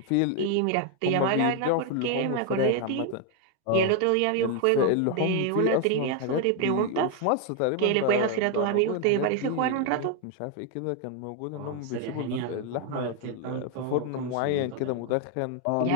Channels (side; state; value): both; different; correlation 0.01